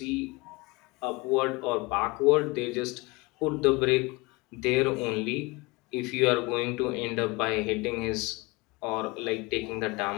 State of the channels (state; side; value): quieter; right; 24.6 dB